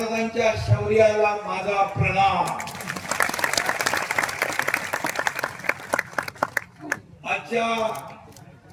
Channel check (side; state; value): both; identical; correlation 1.00